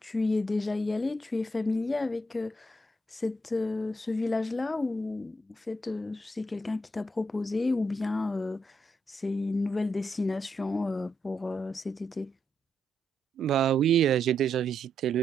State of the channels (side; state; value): both; normal; correlation 0.79